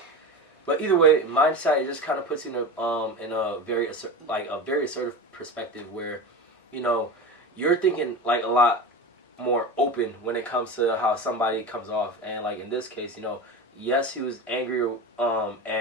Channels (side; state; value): both; normal; correlation 0.27